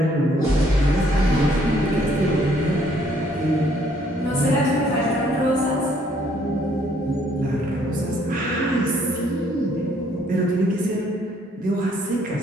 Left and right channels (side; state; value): both; normal; correlation 0.65